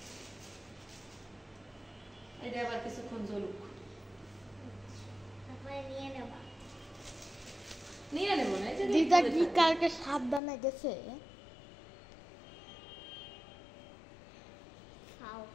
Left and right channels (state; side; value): drops out; right; at 10.4 s